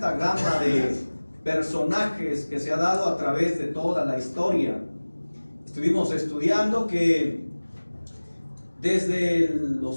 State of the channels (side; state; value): both; inverted; correlation -1.00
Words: gama de personajes que se ha dado a través de toda la historia. Estuvimos estudiando que desde